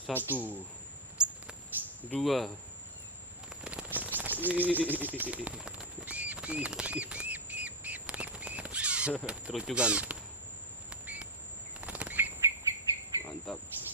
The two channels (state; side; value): normal; both; correlation 0.02